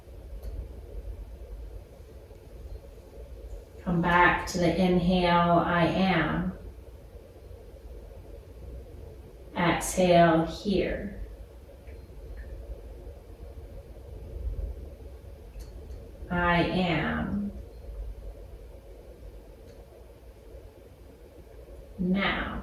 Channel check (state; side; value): identical; both; correlation 1.00